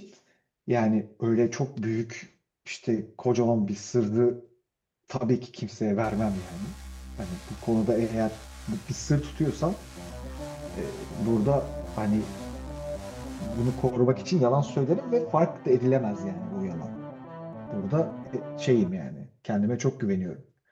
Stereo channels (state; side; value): identical; both; correlation 1.00